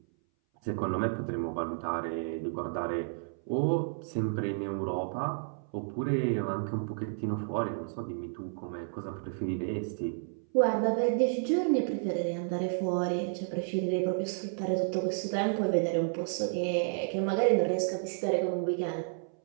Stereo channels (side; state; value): left; silent; 57 dB below the other